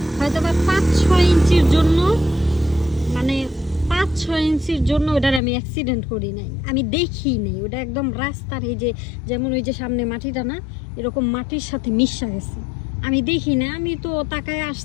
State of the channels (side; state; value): right; drops out; at 5.4 s